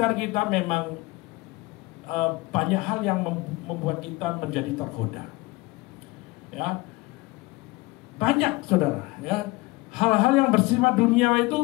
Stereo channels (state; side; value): quieter; right; 22.6 dB